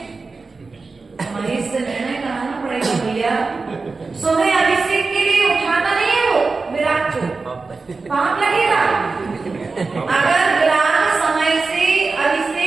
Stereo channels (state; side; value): quieter; left; 4.1 dB